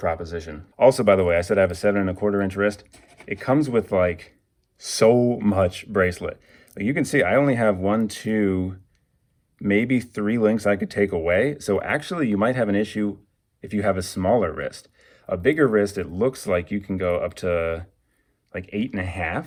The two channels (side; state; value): both; identical; correlation 1.00